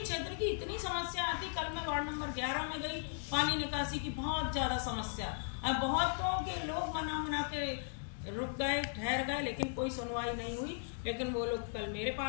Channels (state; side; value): silent; right; digital silence